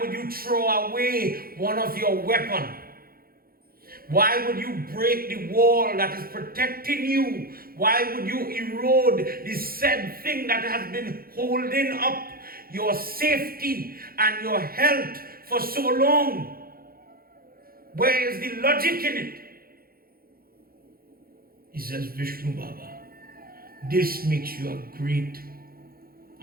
you throw away one of your weapons? Why would you break the wall that is protecting you? Why would you erode the said thing that has been holding up your safety and your health for so long? Where is the logic in it? He says, Vishnu Baba, this makes you a great.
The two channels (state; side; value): late; left; 0.43 ms